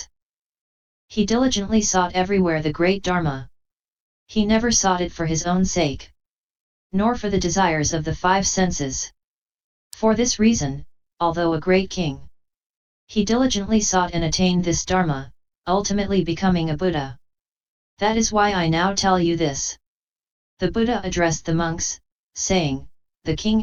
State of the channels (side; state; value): both; identical; correlation 1.00